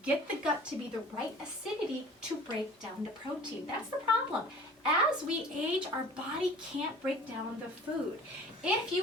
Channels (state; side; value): normal; both; correlation 0.45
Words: get the gut to be the right acidity to break down the protein. That's the problem. As we age, our body can't break down the food. If